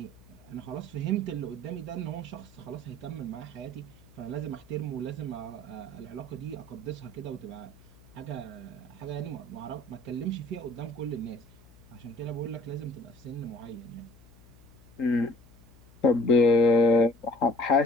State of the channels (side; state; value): left; noise; hum, 25 dB below the sound